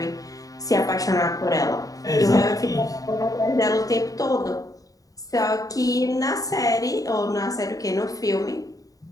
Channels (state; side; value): late; right; 0.17 ms